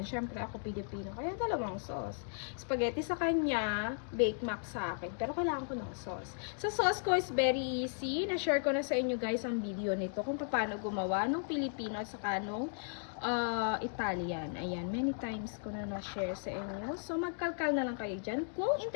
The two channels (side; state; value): right; silent; digital silence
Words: ako Pilipino. Kaya dalawang sauce. Spaghetti sa kanya, Bake Mac sa akin. Pero kailangan ko ng sauce. Sa sauce ko is very easy. Na-share ko na sa inyo guys ang video nito kung paano gumawa ng Pilipino at saka nung Italian. Ayan, many times ko na na-share sa inyo. So, magkalkal na lang kayo dyan kung